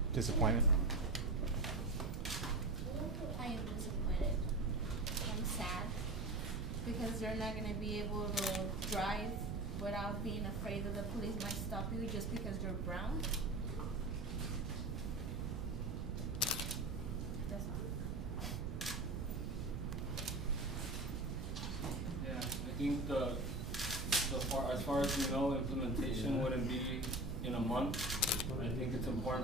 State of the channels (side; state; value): right; noise; rumble, 4 dB below the sound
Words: Disappointment? I am disappointed. I'm sad because they're not going to be able to drive without being afraid that the police might stop you just because you're brown. That's all. Yeah, I think as far as we know, implementation wouldn't be in a month. I think it's